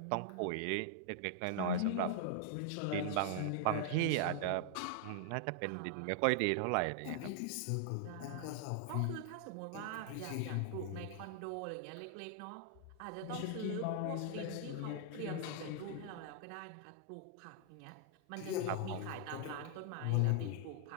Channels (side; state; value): both; different; correlation -0.01